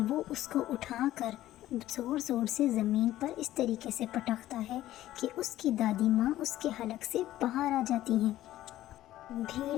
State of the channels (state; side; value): quieter; right; 14.3 dB